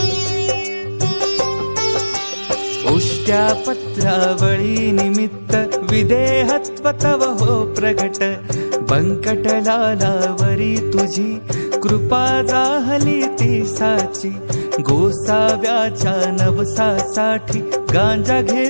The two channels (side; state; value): both; inverted; correlation -1.00